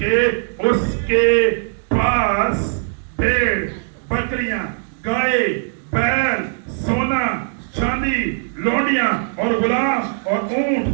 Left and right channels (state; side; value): silent; left; digital silence